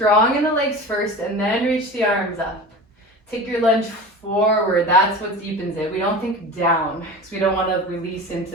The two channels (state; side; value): normal; both; correlation 0.33